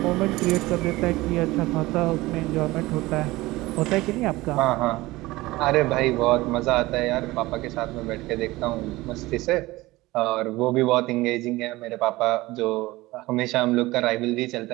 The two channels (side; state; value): left; quieter; 19.5 dB